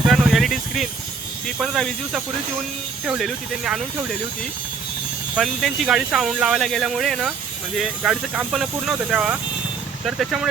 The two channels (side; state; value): left; quieter; 5.0 dB